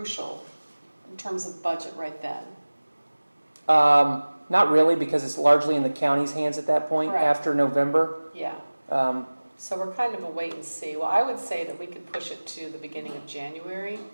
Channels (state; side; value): inverted; both; correlation -1.00